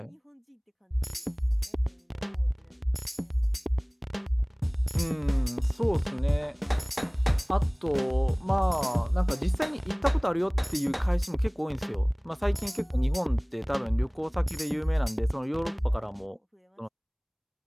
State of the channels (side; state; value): both; identical; correlation 1.00